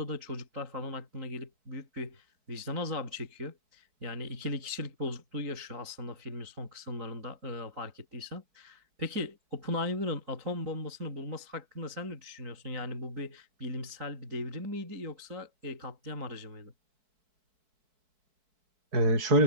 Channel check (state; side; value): late; left; 4.6 ms